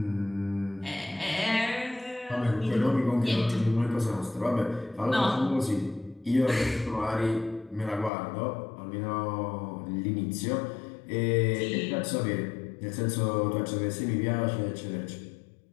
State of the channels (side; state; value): right; drops out; at 8.1 s